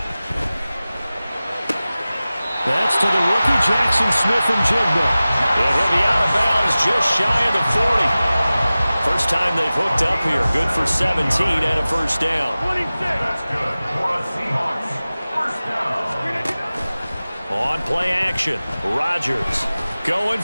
That's to the rookie Jackson Smith-Njigba. And he'll be out of bounds just shy of the 40. First time they've hooked up here. Good for 17 and a first down. That's good for a Seahawks first down. On play action, Rodgers going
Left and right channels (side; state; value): both; inverted; correlation -0.97